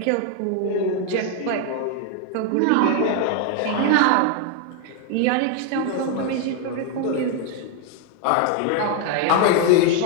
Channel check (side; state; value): both; different; correlation 0.01